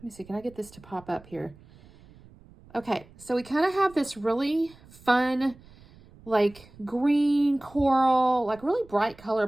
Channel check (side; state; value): right; noise; rumble, 24 dB below the sound